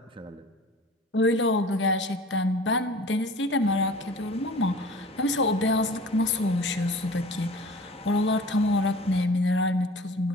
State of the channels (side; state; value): both; normal; correlation 0.43